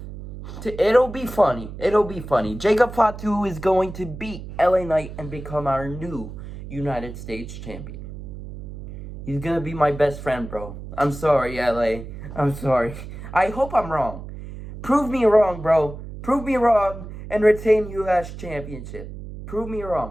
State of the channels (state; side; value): noise; right; hum, 11 dB below the sound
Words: It'll be funny. It'll be funny. Jacob Fatu is going to beat LA Knight and become our new United States champion. He's gonna be my best friend, bro. I'm sorry, LA. I'm sorry. I hope I'm wrong. Prove me wrong, bro. Prove me wrong and retain US Championship. Prove me